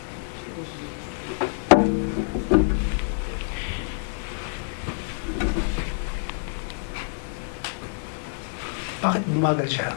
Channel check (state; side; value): silent; right; digital silence